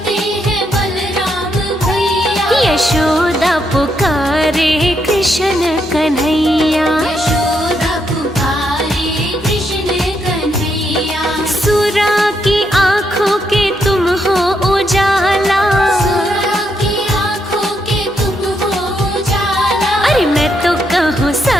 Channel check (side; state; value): both; normal; correlation 0.78